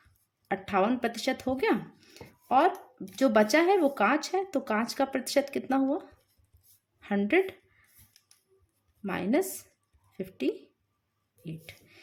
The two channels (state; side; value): identical; both; correlation 1.00